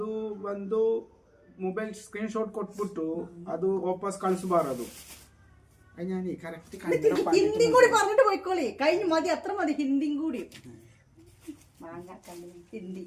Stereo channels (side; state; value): both; identical; correlation 1.00